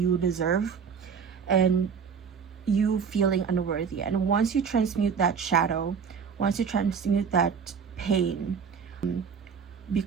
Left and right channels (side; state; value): left; quieter; 6.4 dB